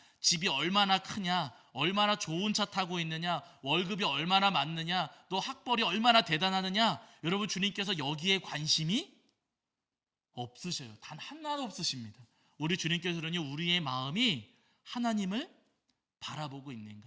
집이 얼마나 크냐, 얼마나 좋은 차 타고 있느냐, 월급이 얼마나 많느냐, 또 학벌이 얼마나 대단하느냐, 여러분, 주님께서 여기에 관심이 없으셔요. 단 하나도 없으십니다. 우리 주님께서는요, 우리의 마음이 하나님을 바라보고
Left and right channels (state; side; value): identical; both; correlation 1.00